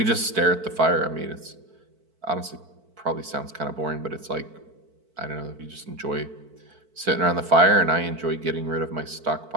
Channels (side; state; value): left; late; 4.5 ms